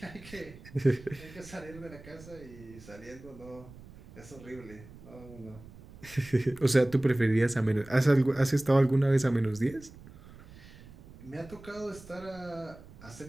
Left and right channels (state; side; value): noise; right; rumble, 19 dB below the sound